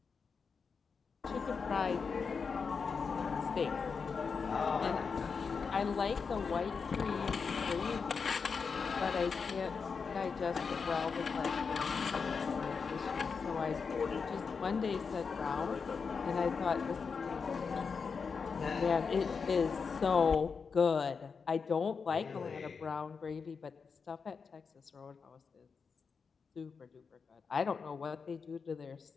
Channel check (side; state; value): right; quieter; 5.5 dB